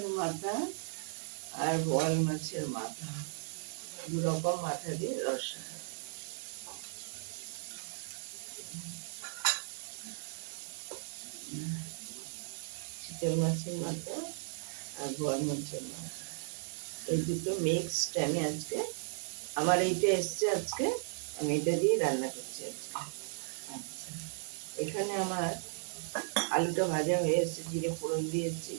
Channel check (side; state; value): left; silent; digital silence